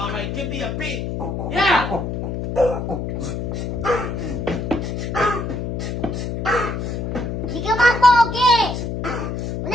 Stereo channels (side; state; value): left; noise; hum, 3 dB below the sound